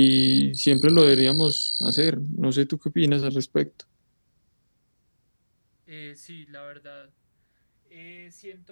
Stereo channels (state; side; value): inverted; both; correlation -1.00